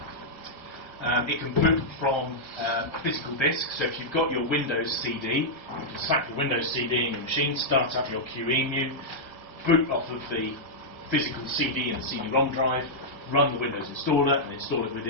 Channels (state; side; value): late; right; 1.5 ms